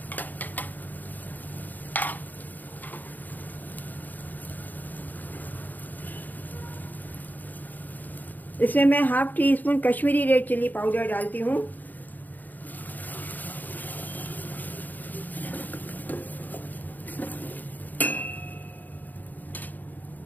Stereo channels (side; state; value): right; late; 0.084 ms